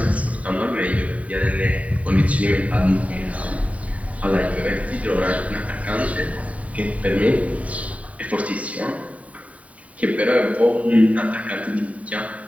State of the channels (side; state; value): left; late; 0.068 ms